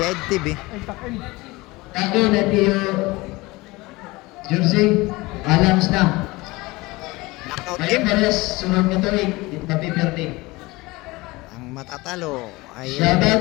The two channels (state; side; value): quieter; right; 21.9 dB